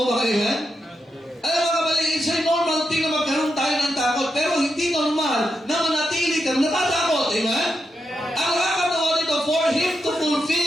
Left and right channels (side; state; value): both; normal; correlation 0.85